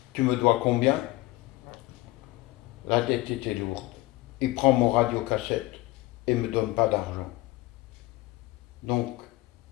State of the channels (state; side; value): quieter; right; 19.7 dB